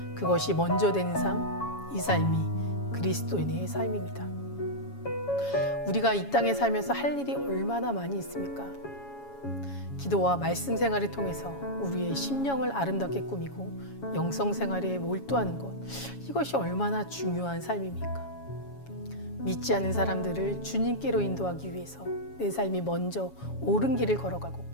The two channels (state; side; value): late; right; 7.2 ms